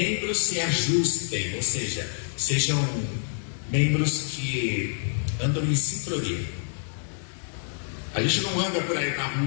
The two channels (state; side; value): silent; right; digital silence